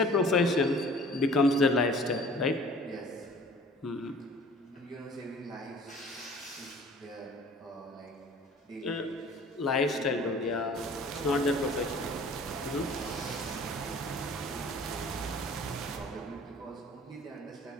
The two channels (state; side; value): normal; both; correlation 0.49